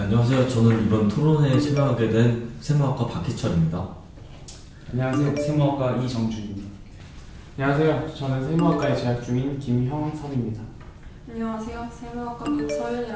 저는 이번 토론회에 참여하게 된 세무학과 박희철입니다. 안녕하세요. 세무학과 이정준입니다. 안녕하세요. 저는 세무학과에 재학 중인 김형섭입니다. 안녕하세요. 세무학과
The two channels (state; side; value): identical; both; correlation 1.00